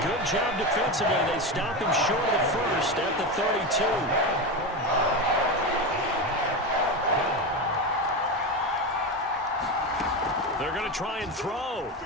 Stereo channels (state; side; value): normal; both; correlation 0.18